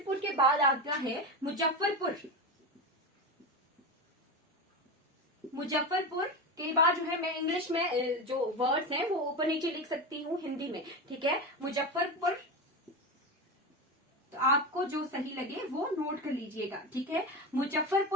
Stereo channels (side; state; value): both; normal; correlation 0.19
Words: के बाद आता है मुजफ्फरपुर। मुजफ्फरपुर के बाद जो है मैं इंग्लिश में जो वर्ड्स हैं वो ऊपर नीचे लिख सकती हूँ हिंदी में। ठीक है, मुजफ्फरपुर, तो आपको जो सही लगे वो नोट कर लीजिएगा। ठीक है,